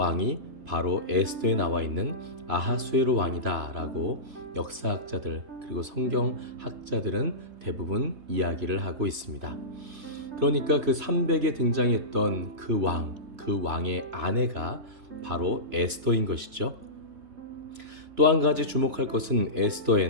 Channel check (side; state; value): left; late; 3.3 ms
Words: 바로 에스더에 나와 있는 아하수에로 왕이다 라고 역사학자들 그리고 성경학자들은 대부분 이야기를 하고 있습니다. 그러니까 그 300에 등장했던 그 왕의 아내가 바로 에스더인 것이죠. 또 한 가지 주목할 것은